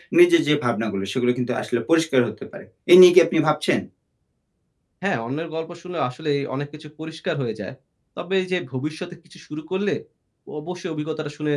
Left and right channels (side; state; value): both; identical; correlation 1.00